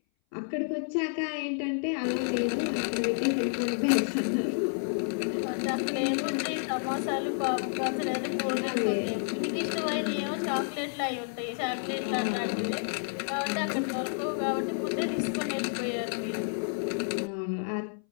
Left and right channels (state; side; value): silent; right; 58 dB below the other